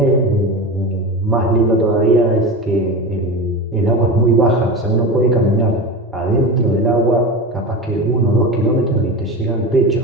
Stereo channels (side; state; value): both; normal; correlation 0.26